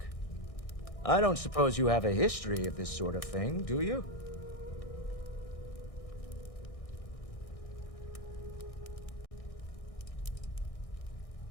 I don't suppose you have a history of this sort of thing, do you?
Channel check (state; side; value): late; right; 1.6 ms